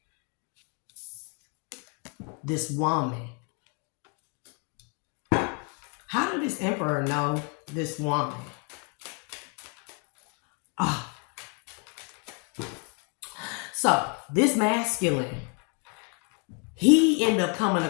this woman. How did this Emperor know this woman? So this masculine, he ended up coming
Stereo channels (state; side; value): quieter; right; 36.8 dB